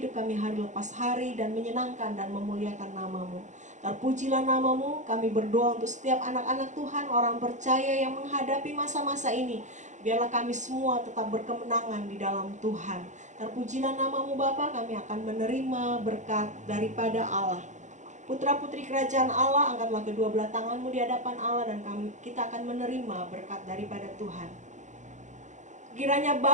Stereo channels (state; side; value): late; left; 0.35 ms